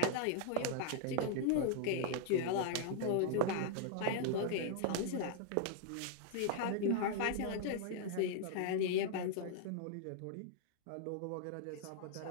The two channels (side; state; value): both; different; correlation -0.01